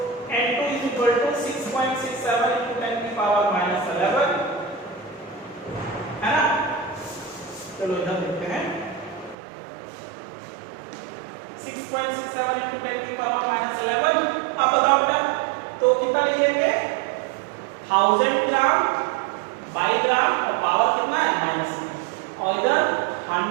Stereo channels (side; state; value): left; drops out; at 9.3 s